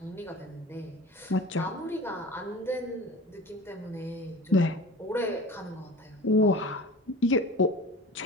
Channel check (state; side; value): normal; both; correlation 0.38